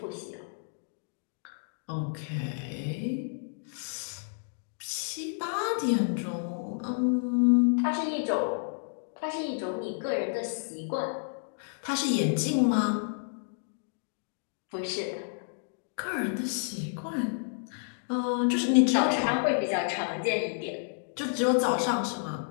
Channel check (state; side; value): silent; right; digital silence